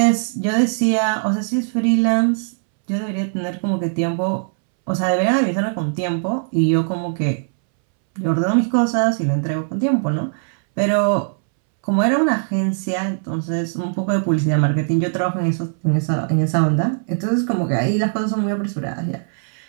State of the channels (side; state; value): left; silent; 66 dB below the other